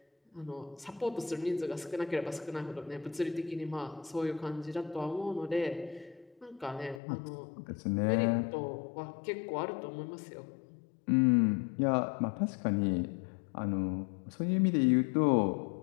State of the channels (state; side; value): drops out; right; at 7.0 s